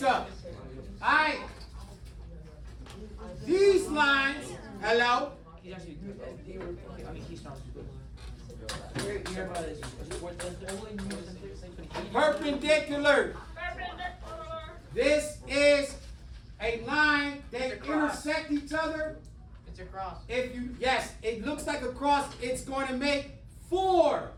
up. Alright. These lines, hello? He's actually good. I mean, he sounds good. You hear about this? Perpendicular. This is a line that intersect each other. It's a cross. If you, yes, it looks like a cross. It's going to make 4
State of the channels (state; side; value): identical; both; correlation 1.00